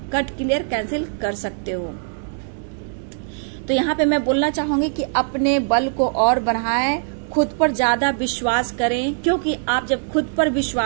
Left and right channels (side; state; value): left; silent; digital silence